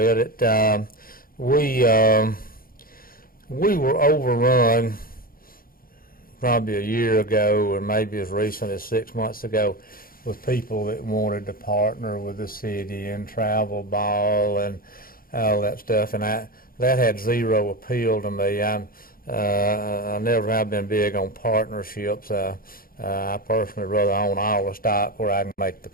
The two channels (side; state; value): right; late; 0.42 ms